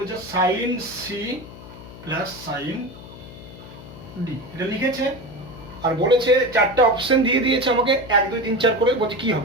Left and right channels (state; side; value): noise; left; hum, 16 dB below the sound